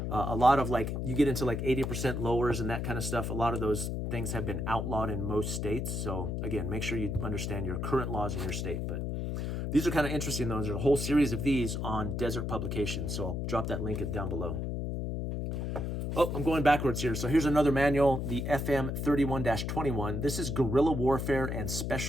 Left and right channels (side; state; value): left; noise; hum, 2 dB below the sound